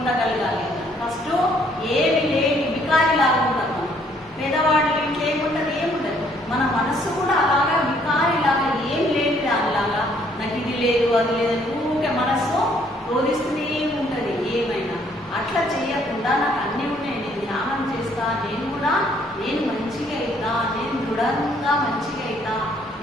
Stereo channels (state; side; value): normal; both; correlation 0.65